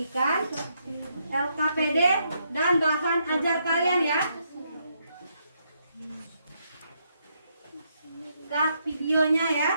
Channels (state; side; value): inverted; both; correlation -0.76